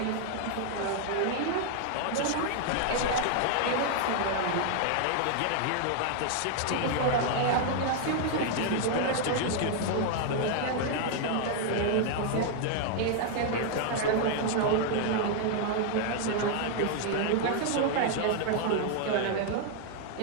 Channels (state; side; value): different; both; correlation 0.00